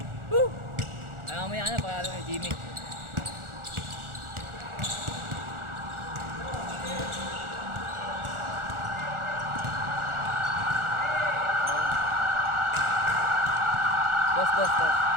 Woo! Ayaw mo yan, pakalo kay Jimmy. Dos.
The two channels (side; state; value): left; late; 1.4 ms